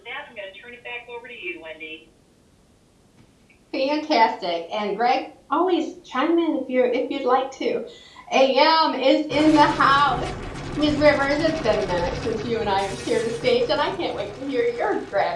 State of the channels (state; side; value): identical; both; correlation 1.00